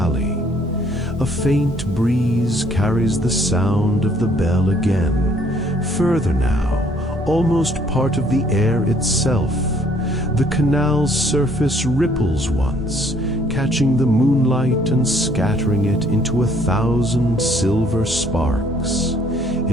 A faint breeze carries the sound of the bell again. Further now, almost part of the air itself. The canal's surface ripples once, catching the moonlight and scattering it into 1,000 silver sparks.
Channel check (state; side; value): normal; both; correlation 0.62